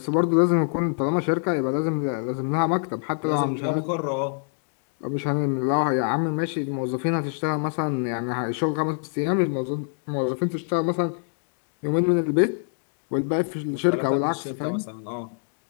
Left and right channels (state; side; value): silent; right; digital silence